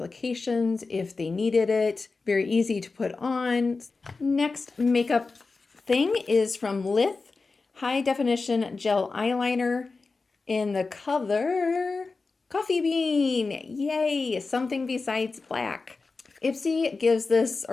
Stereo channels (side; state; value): right; quieter; 4.0 dB